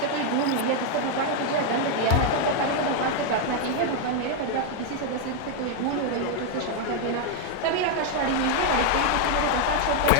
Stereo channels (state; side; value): different; both; correlation 0.00